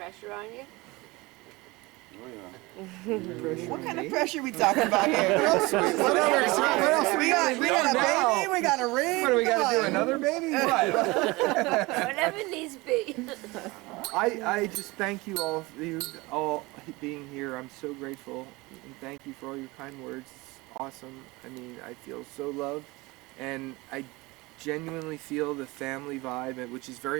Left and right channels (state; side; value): quieter; left; 22.9 dB